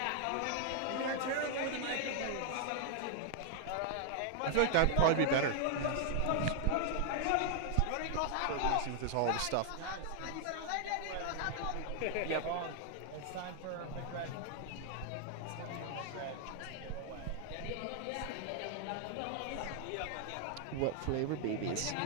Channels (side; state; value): both; different; correlation 0.00